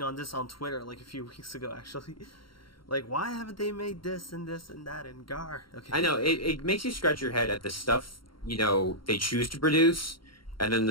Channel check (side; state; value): right; late; 0.73 ms